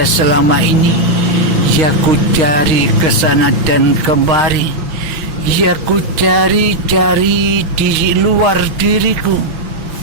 selama ini, ya ku cari ke sana dan kemari, ya ku cari-cari di luar diriku.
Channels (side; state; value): left; late; 5.9 ms